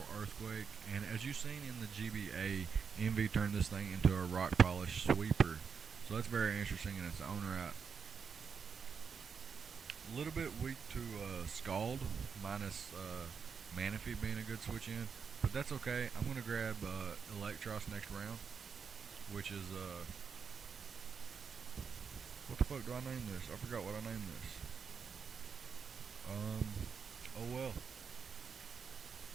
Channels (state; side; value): quieter; left; 6.2 dB